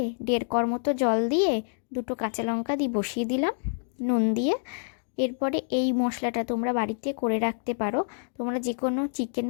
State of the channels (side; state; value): right; silent; digital silence